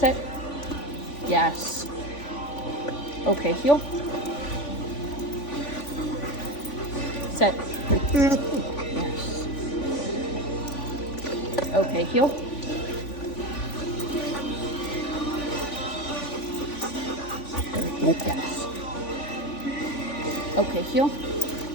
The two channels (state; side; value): late; right; 3.5 ms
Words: Yes. Okay, heel. Sit. Yes. Okay, heel. Yes. Okay, heel.